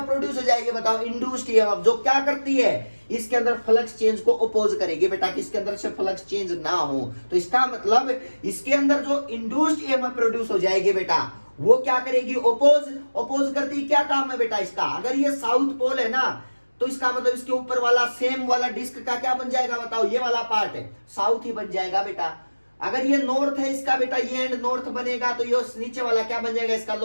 प्रोड्यूस हो जाएगी बताओ, इंड्यूस्ड ईएमएफ, जो क्या करती है इसके अंदर फ्लक्स चेंज को अपोज करेगी बेटा, कि इसके अंदर से फ्लक्स चेंज ना हो। तो इसका मतलब इसके अंदर जो इंड्यूस्ड ईएमएफ प्रोड्यूस हो जाएगी बेटा, वो क्या करेगी, अपोज करती। क्या काम है बेटा इसका, अगर ये साउथ पोल है ना तो इसका मतलब इसके ऊपर वाला सेम वाला डिस्क का क्या बन जाएगा बताओ, ये वाला पार्ट है साउथ ही बन जाएगा बेटा। अगर ये नॉर्थ है इसका बेटा, ये एंड नॉर्थ बनेगा, तो ये नीचे वाला क्या बन जाएगा, इसका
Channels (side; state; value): both; inverted; correlation -1.00